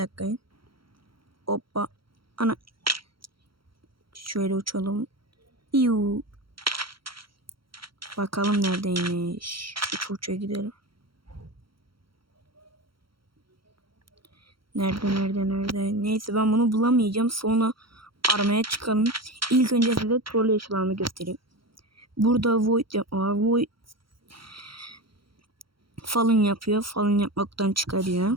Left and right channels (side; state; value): left; late; 0.74 ms